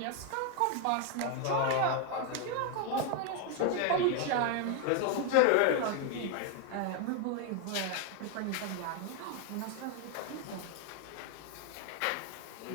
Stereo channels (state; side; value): different; both; correlation 0.01